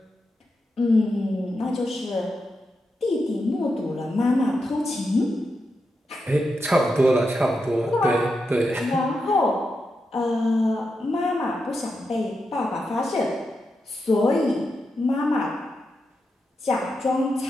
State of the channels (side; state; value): both; normal; correlation 0.86